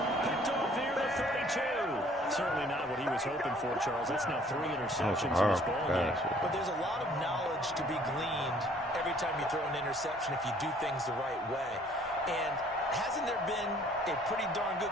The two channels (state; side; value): normal; both; correlation 0.58